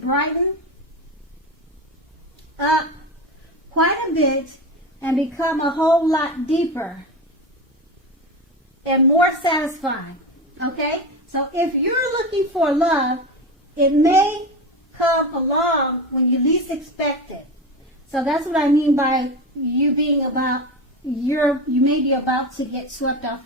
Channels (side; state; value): both; normal; correlation 0.22